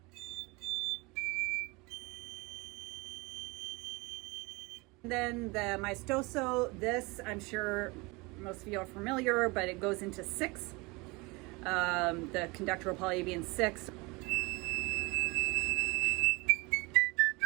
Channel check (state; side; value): quieter; left; 25.7 dB